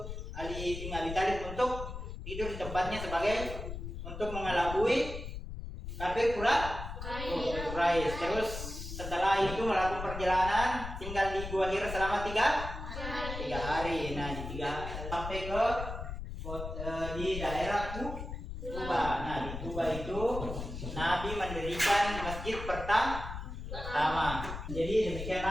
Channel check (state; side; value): noise; left; rumble, 7 dB below the sound